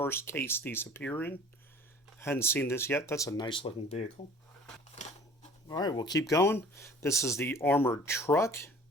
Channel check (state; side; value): normal; both; correlation 0.48